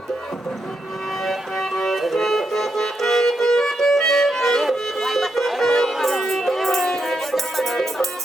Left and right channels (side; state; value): both; normal; correlation 0.83